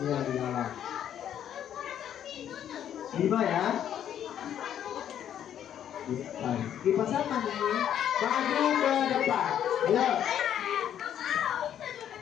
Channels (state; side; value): quieter; right; 10.0 dB